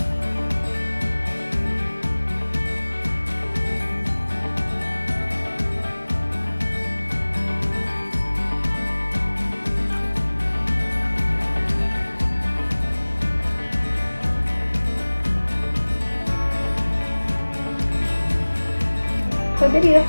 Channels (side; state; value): both; inverted; correlation -1.00